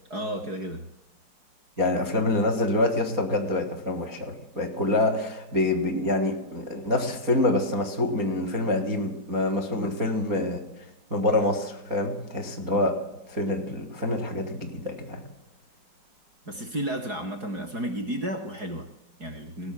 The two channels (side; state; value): left; late; 4.8 ms